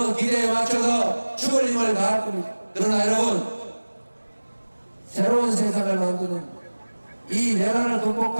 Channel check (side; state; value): both; inverted; correlation -1.00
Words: 기대에 맞춰서 죽을 힘을 다할 겁니다. 그러나 여러분, 새로운 세상을 만드는 이 내란을